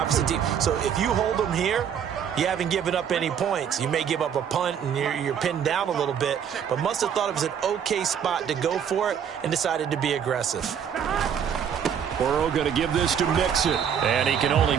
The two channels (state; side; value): quieter; left; 8.2 dB